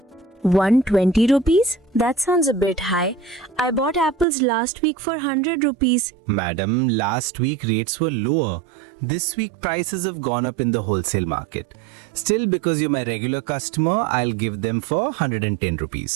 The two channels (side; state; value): left; drops out; at 4.2 s